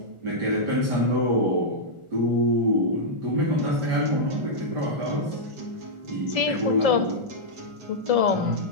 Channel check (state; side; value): late; left; 1.4 ms